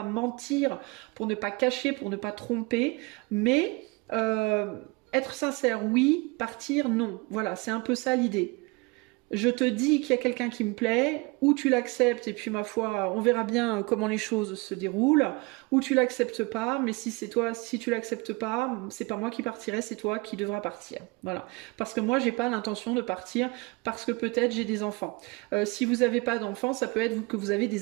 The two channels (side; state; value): left; quieter; 26.6 dB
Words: mentir, pour ne pas cacher, pour ne pas tromper. Mais être sincère, oui. Partir, non. Voilà, c'est un peu ça l'idée. Je te dis qu'il y a quelqu'un qui me plaît, ou tu l'acceptes, et puis ma foi, on verra bien comment les choses se déroulent, ou tu l'acceptes pas, mais si tu l'acceptes pas, c'est pas moi qui partirai, c'est toi qui devras partir. Voilà. Parce que moi, j'ai pas l'intention de partir, parce que peut-être j'ai des enfants. Si vous avez pas d'enfants, ça peut être que vous avez